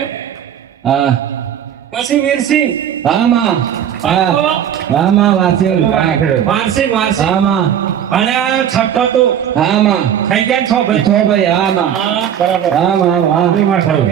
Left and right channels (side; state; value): left; quieter; 9.5 dB